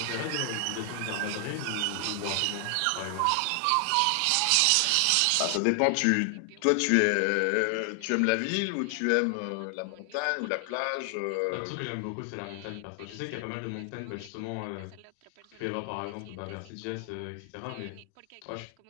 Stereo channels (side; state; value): both; different; correlation 0.00